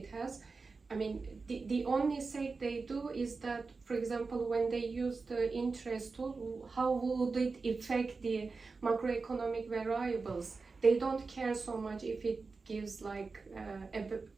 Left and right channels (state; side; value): quieter; left; 4.3 dB